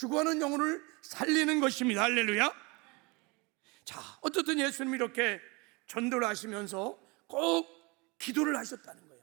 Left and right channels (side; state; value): left; quieter; 27.3 dB